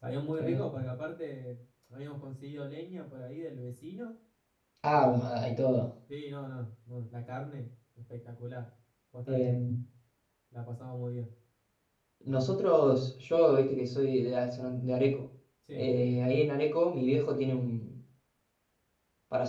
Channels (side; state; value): both; identical; correlation 1.00